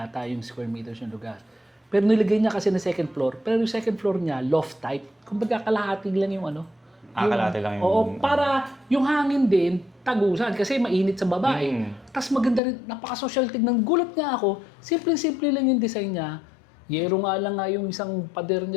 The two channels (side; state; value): right; drops out; at 12.6 s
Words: yung square meters yung lugar. Pero nilagay niya kasi na second floor. Pero yung second floor niya, loft type. Kumbaga kalahati lang yung Kalahati lang yung... Oo, para yung hangin din, tagusan. Kasi mainit sa baba Tapos maganda rin, napaka-social tignan. Gulat nga ako, simple-simple lang yung design niya. Yero nga lang yung isang pader